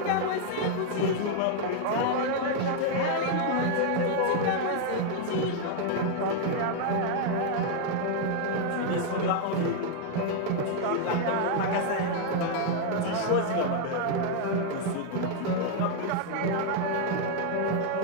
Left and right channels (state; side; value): different; both; correlation 0.00